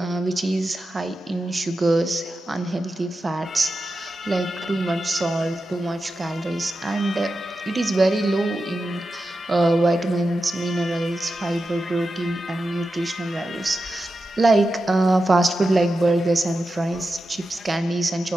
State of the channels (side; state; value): both; normal; correlation 0.91